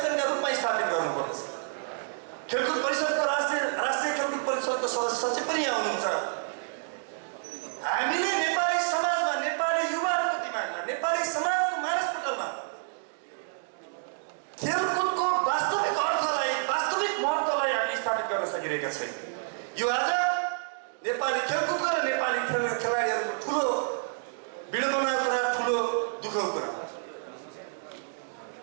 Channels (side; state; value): left; silent; digital silence